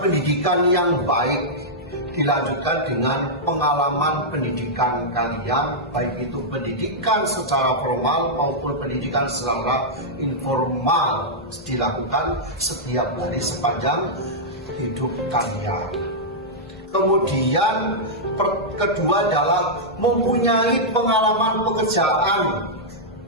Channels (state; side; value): normal; both; correlation -0.08